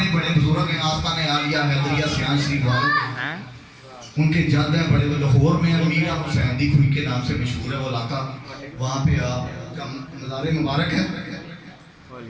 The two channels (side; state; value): both; identical; correlation 1.00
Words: بڑے بزرگ ہیں, آستانِ عالیہ حیدریہ سیان شریف والے, ان کے جد ہیں بڑے لاہور میں. میرا حسین دی کھوئی کے نام سے مشہور ہے وہ علاقہ, وہاں پہ آپ کا مزار مبارک ہے.